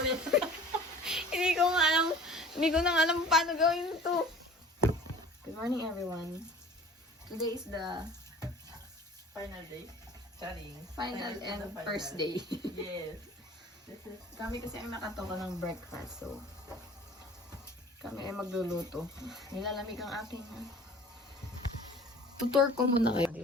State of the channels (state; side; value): normal; both; correlation 0.45